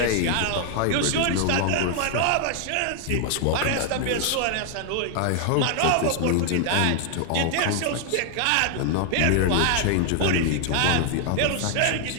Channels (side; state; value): both; different; correlation 0.00